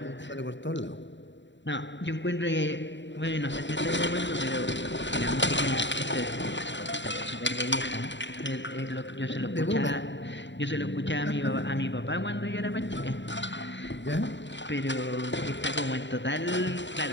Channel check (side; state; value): right; late; 0.53 ms